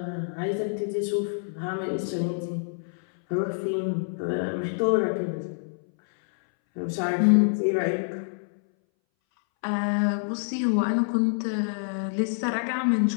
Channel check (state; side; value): silent; right; 60 dB below the other